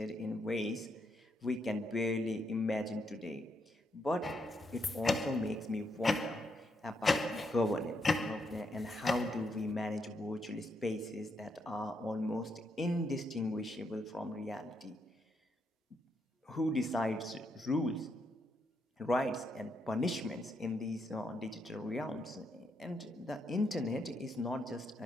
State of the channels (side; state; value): both; normal; correlation 0.79